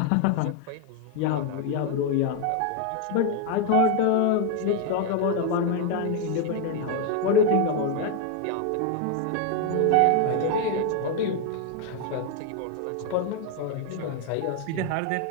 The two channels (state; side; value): different; both; correlation 0.01